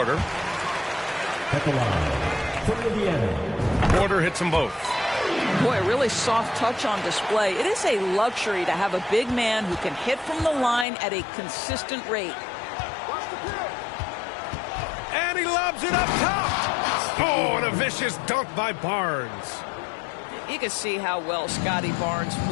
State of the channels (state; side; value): drops out; right; at 10.9 s